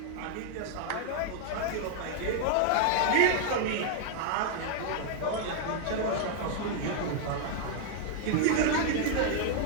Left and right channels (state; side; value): different; both; correlation 0.00